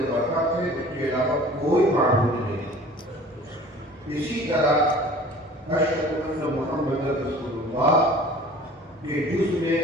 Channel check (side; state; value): both; normal; correlation 0.46